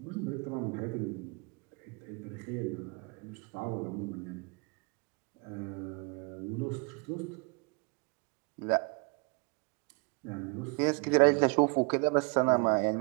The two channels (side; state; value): left; quieter; 31.8 dB